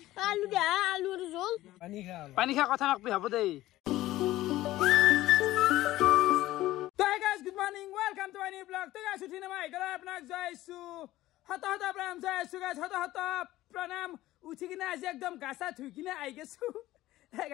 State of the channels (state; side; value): quieter; right; 15.9 dB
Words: আলু দে আলুৰ জোল পানী খা কথা নকবি হ'ব দেই তো guys good morning welcome to my new blog তো গাইস উঠিনে মই গলা আপোনাক জয়ছু হত হত প্ৰণাম জয়ছু গাইস হত হত প্ৰণাম উঠি কিনে আজি একদম গাছা ধুই কিনে আই গেছু হে